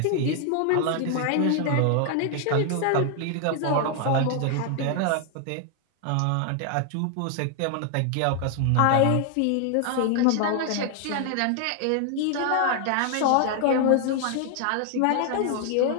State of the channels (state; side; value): different; both; correlation 0.00